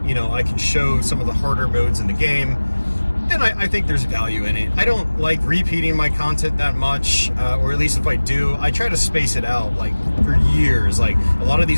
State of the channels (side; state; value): both; inverted; correlation -1.00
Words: you know, I can show some of the harder modes in the game, then I think there's value in it. I don't like repeating my content that much, or at least if I do, I try to space it out like for years. Like a lot of